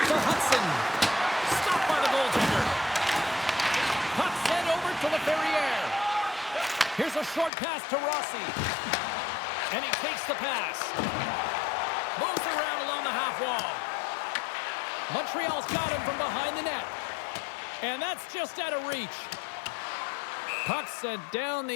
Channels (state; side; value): drops out; right; at 7.5 s